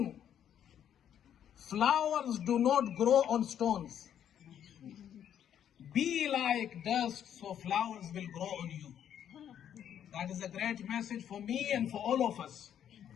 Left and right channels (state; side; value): quieter; right; 9.7 dB